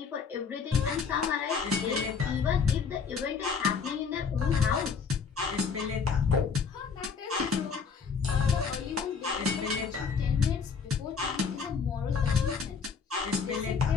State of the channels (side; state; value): right; quieter; 5.9 dB